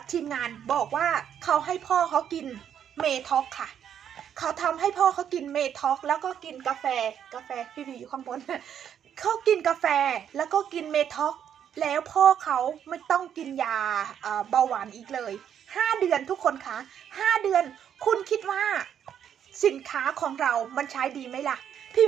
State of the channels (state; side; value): quieter; left; 9.0 dB